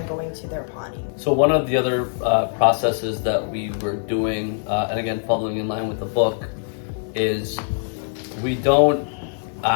going to their potty. So one of the other processes that we were doing, and again following in line with the book, is we don't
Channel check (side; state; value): right; silent; 60 dB below the other